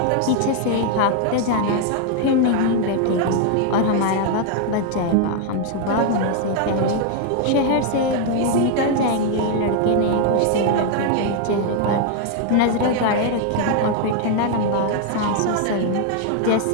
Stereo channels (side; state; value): both; different; correlation 0.00